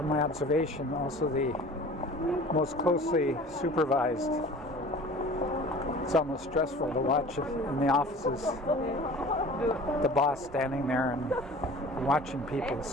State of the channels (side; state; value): both; normal; correlation 0.43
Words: my observation, also the most closely supervised. It's almost stressful to watch in the offices. The boss standing there and watching people